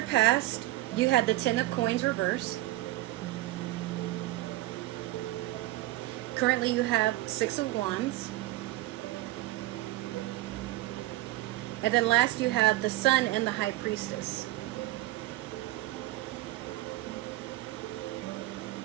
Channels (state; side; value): quieter; left; 17.6 dB